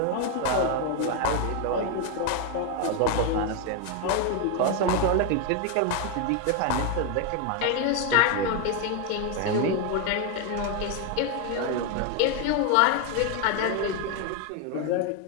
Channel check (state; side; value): different; both; correlation 0.01